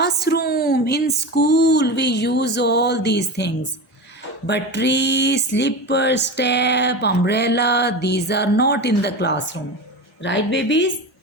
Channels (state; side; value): normal; both; correlation 0.26